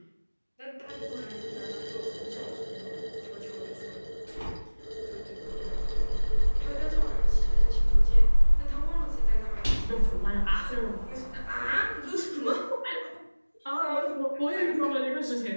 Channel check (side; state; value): both; inverted; correlation -1.00